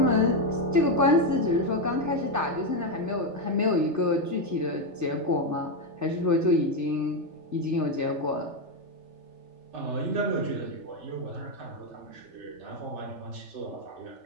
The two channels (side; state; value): left; late; 3.4 ms